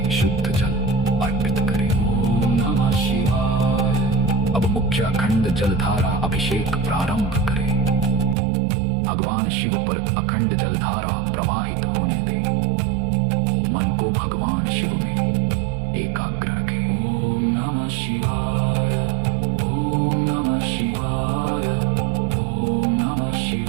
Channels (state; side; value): drops out; left; at 8.3 s